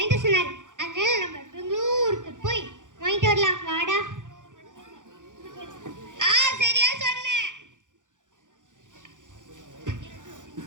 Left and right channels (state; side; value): late; left; 0.87 ms